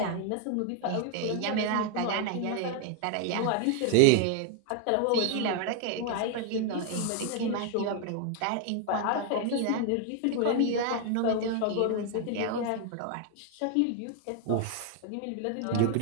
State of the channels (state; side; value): different; both; correlation 0.00